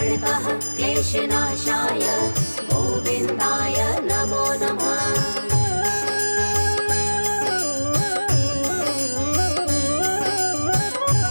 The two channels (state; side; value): inverted; both; correlation -1.00